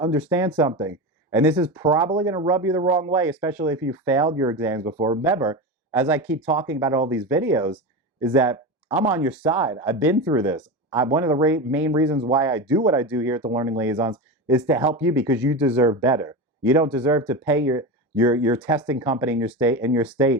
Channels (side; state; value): both; normal; correlation 0.21